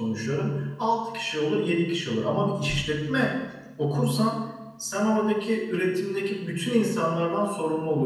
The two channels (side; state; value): both; identical; correlation 1.00